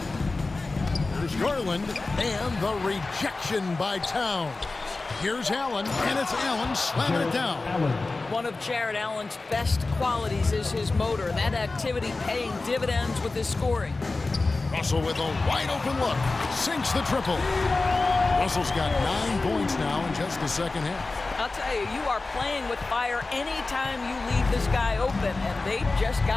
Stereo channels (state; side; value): quieter; right; 3.5 dB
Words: There's Garland, and the rejection by Towns. Here's Allen, and it's Allen slamming it down. One of Jared Allen's best qualities is his motor. That activity paying dividends with his scoring. Russell with a wide open look. Sinks the triple. Russell's got 9 points now in just the second half. I'll tell you, you are playing with fire anytime you leave this guy open, and they just